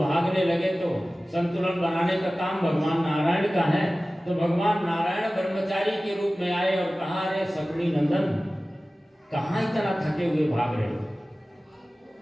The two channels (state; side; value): normal; both; correlation 0.97